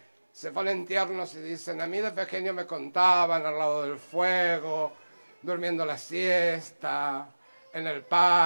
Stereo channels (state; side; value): inverted; both; correlation -1.00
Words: se ponen tiernos y dicen, a mí de pequeño me contaban al lado del fuego, durmiendo la siesta, en el